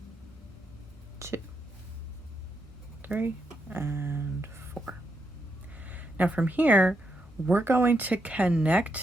2, 3, and 4. Now from here, we're going to connect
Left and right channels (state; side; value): normal; both; correlation 0.81